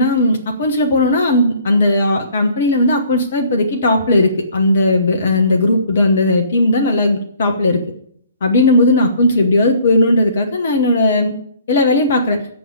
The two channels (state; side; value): inverted; both; correlation -0.56